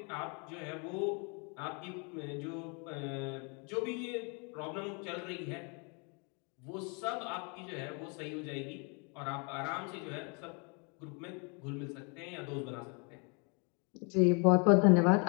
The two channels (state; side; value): quieter; right; 34.4 dB